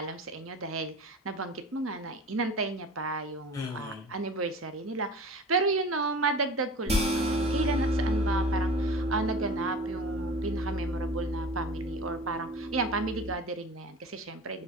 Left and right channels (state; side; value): normal; both; correlation 0.38